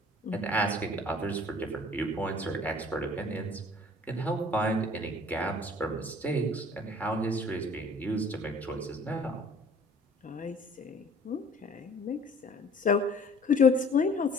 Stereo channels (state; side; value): normal; both; correlation 0.51